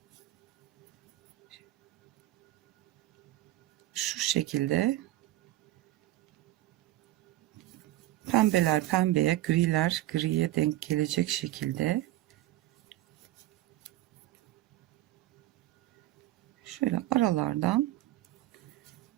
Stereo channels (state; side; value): quieter; left; 15.4 dB